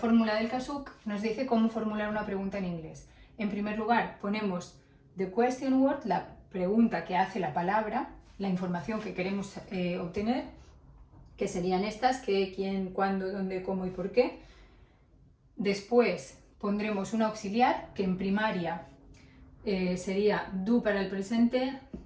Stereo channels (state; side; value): identical; both; correlation 1.00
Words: del KASUK nos dice cómo formular una pregunta en inglés. En primer lugar ponemos the question word, la pregunta que hace la palabra, la información que queremos obtener, que serían estas, qué, quién, cuándo, dónde, cómo y por qué. Después pondremos un auxiliar que en primaria sería do para el presente,